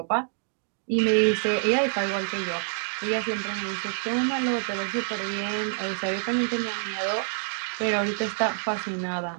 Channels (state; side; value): silent; left; digital silence